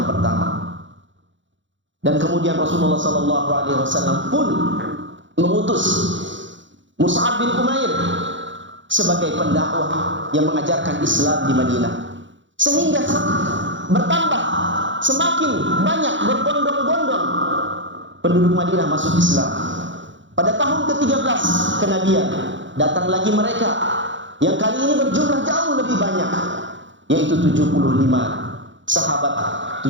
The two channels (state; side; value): late; left; 0.54 ms